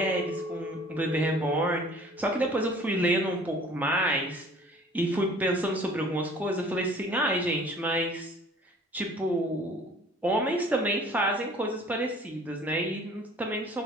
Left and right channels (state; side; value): normal; both; correlation 0.50